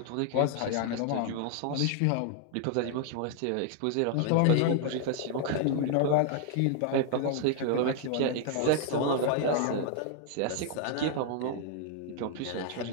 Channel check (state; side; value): different; both; correlation 0.00